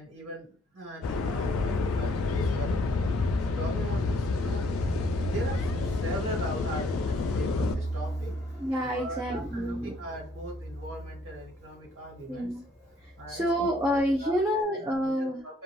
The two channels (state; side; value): normal; both; correlation 0.66